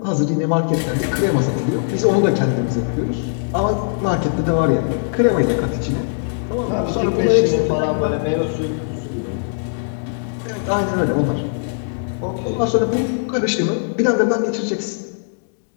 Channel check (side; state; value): right; silent; digital silence